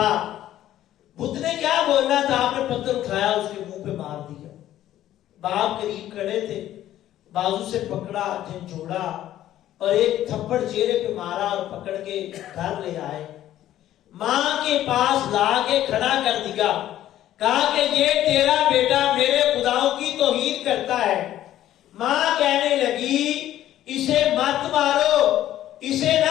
بت نے کیا بولنا تھا؟ آپ نے پتھر اٹھایا اس کے منہ پہ مار دیا۔ باپ قریب کھڑے تھے، بازو سے پکڑا، جھنجھوڑا اور ایک تھپڑ چہرے پہ مارا اور پکڑ کے گھر لے آئے، ماں کے پاس لا کے کھڑا کر دیا، کہا کہ یہ تیرا بیٹا میرے خداؤں کی توہین کرتا ہے۔ ماں کہنے لگی اسے مت مارو، اسے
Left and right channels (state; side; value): quieter; right; 12.8 dB